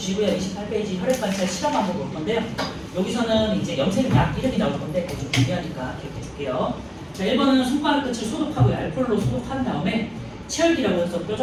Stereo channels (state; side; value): identical; both; correlation 1.00